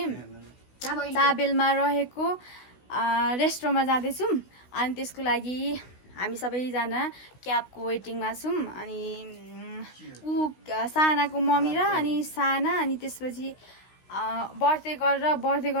चाबेलमा रहेको रेस्टुरेन्टमा जाँदैछौँ। अनि त्यसको लागि हामी सबैजना क्याबको वेटिङमा छौँ। अनि सानाको मम्मी र अनि साना अनि त्यसपछि बर्थडे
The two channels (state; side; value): late; right; 16 ms